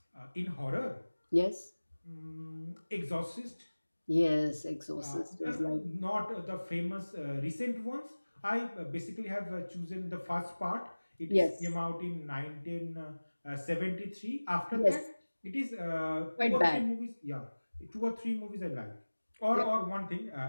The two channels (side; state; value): both; inverted; correlation -1.00